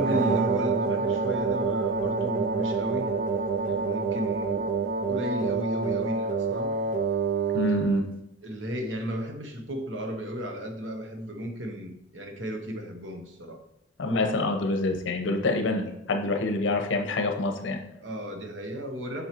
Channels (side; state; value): both; normal; correlation 0.23